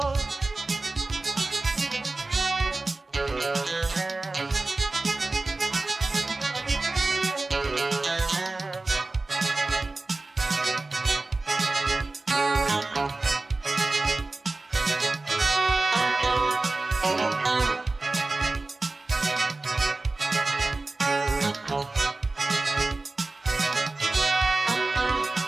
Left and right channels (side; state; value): left; quieter; 3.2 dB